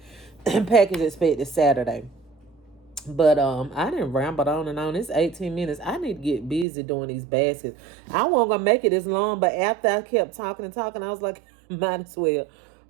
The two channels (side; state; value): left; drops out; at 6.7 s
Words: Package expected Saturday. But I didn't ramble on and on. It's 18 minutes. I need to get busy doing these baskets. I wasn't gonna make it this long, but after I kept talking and talking, I was like, might as well